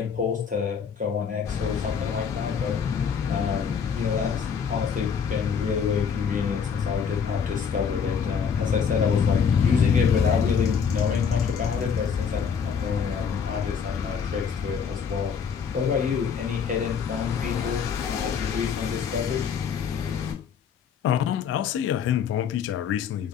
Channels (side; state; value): right; quieter; 6.7 dB